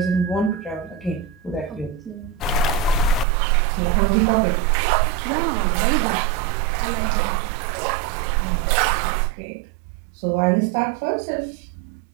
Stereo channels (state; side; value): drops out; left; at 3.2 s